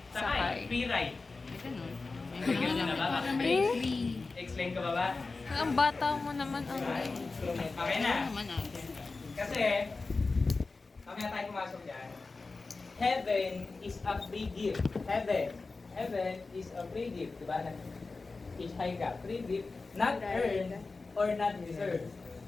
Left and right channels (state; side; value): quieter; right; 3.8 dB